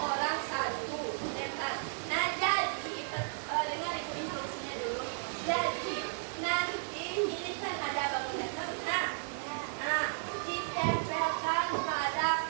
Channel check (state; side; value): silent; left; digital silence